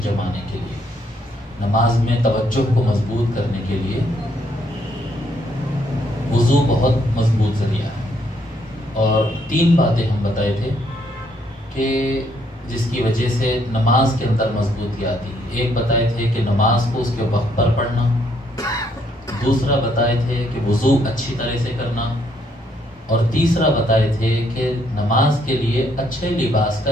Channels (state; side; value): normal; both; correlation 0.71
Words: جمانے کے لیے، نماز میں توجہ کو مضبوط کرنے کے لیے وضو بہت مضبوط ذریعہ ہے۔ اور 3 باتیں ہم بتائے تھے کہ جس کی وجہ سے نماز کے اندر مضبوطی آتی ہے۔ ایک بتائے تھے کہ نماز کو اس کے وقت پر پڑھنا، دوسرا بتائے تھے کہ وضو اچھی طرح سے کرنا، اور تیسرا بتائے تھے کہ نماز کے لیے اچھے لباس کا